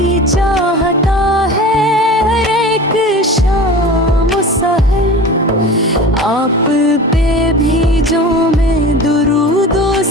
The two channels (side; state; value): both; normal; correlation 0.36